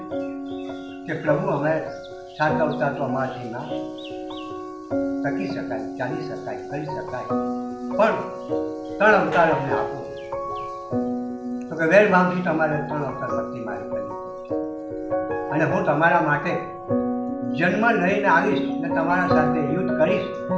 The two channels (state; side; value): identical; both; correlation 1.00